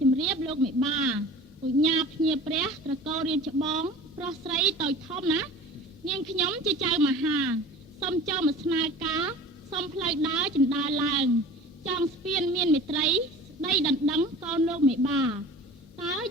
ជម្រាបលោកមេបា បញ្ញាភ្ញាព្រះត្រកូលរៀនច្បងប្រុសស្រីតូចធំណានាងខ្ញុំជាចៅមហាសូមចូលមកស្នើការសូមផ្លូវដើរចិន្តាឡើងចង់ស្ពានមានមេត្រីស្ដីដណ្ដឹងកូនលោកមេបាតើ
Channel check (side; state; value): both; normal; correlation 0.41